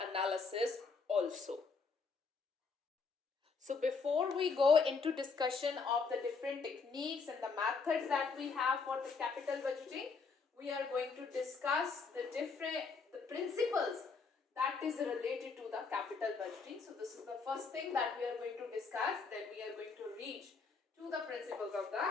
analysis also. So before we go into discussion of the different techniques and the methods that we have for the capital budgeting, we are going to discuss the principles that is related to the capital budgeting. So this is the first thing that we are going to discuss. Then we are going to reach to the principles of the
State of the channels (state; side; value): quieter; right; 4.8 dB